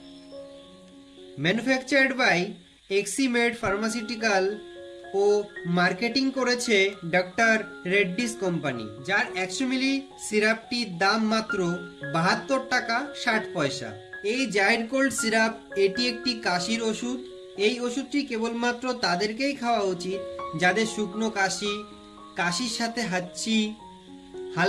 manufactured by Eximed pharmaceutical ও মার্কেটিং করেছে ডক্টর রেড্ডিস কোম্পানি, যার 100 মিলি সিরাপটির দাম মাত্র 72 টাকা 60 পয়সা। এই জাইরোকোল্ড সিরাপ এটি একটি কাশির ওষুধ। এই ওষুধটি কেবলমাত্র তাদেরকেই খাওয়া উচিত যাদের শুকনো কাশি, কাশির সাথে হাঁচি,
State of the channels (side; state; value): both; identical; correlation 1.00